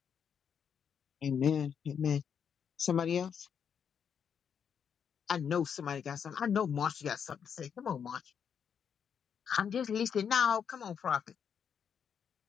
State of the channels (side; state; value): right; quieter; 7.5 dB